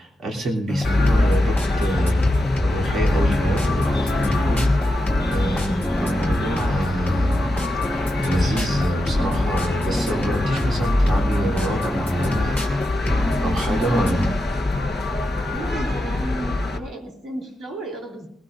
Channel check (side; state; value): both; normal; correlation 0.88